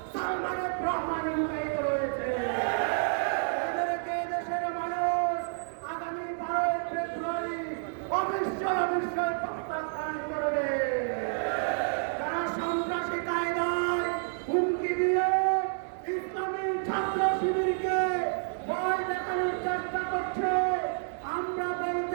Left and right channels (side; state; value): left; silent; digital silence